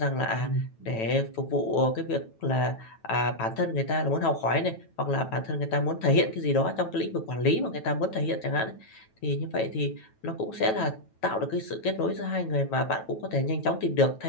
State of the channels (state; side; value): late; right; 9.1 ms